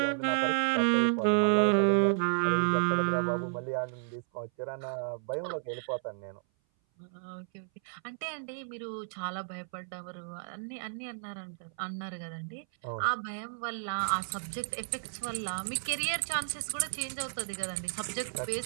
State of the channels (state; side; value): silent; left; 56 dB below the other